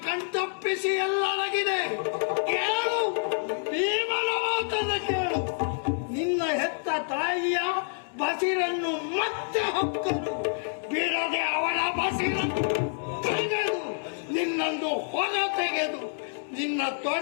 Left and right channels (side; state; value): right; silent; digital silence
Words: ಕಣ್ತಪ್ಪಿಸಿ ಎಲ್ಲರಗಿದೆ. ಕೇಳು, ಭೀಮನ ಮಾತನ್ನು ಕೇಳು. ನಿನ್ನ ಹೆತ್ತ ತಾಯಿಯ ಬಸಿರನ್ನು ಮತ್ತೆ ಹೊಕ್ಕರು, ಬಿಡದೆ ಅವಳ ಬಸಿರನ್ನು ತೆಗೆದು ನಿನ್ನನ್ನು ಹೊರ ತೆಗೆದು ನಿನ್ನ